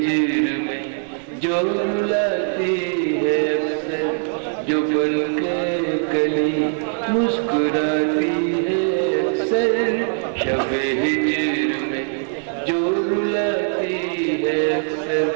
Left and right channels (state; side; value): silent; left; 58 dB below the other